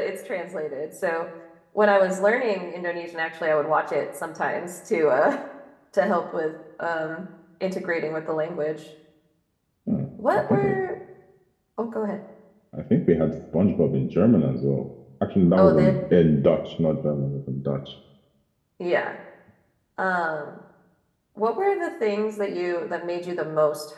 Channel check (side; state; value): both; identical; correlation 1.00